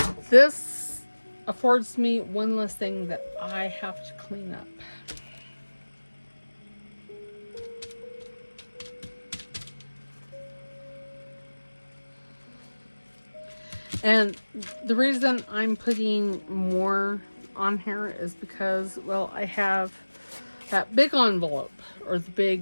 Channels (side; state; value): both; inverted; correlation -1.00